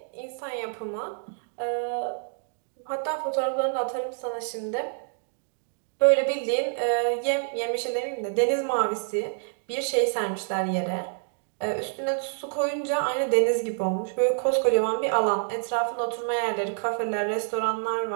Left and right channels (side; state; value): left; silent; digital silence